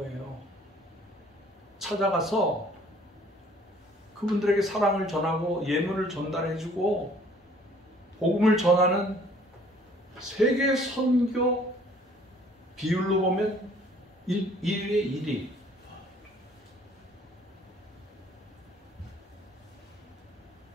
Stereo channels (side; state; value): both; normal; correlation 0.57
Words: 찾아가서 그분들에게 사랑을 전하고 예물을 전달해주고 복음을 전하는 세계 선교 비율로 보면 1위에 1위.